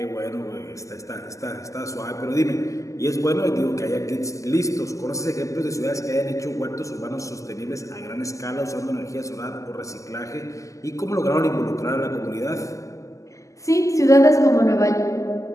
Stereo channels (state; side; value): late; right; 0.16 ms